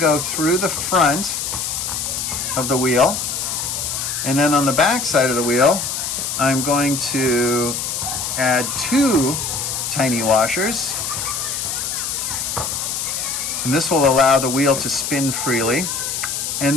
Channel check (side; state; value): left; noise; hiss, 3 dB below the sound